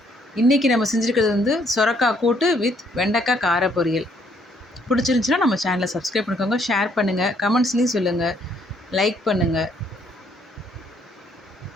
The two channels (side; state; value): both; normal; correlation 0.67